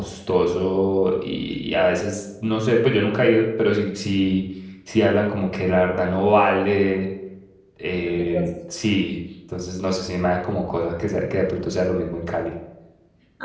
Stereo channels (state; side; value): identical; both; correlation 1.00